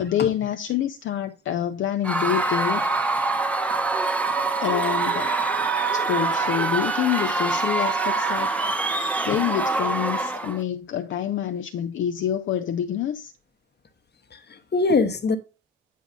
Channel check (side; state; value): both; normal; correlation 0.36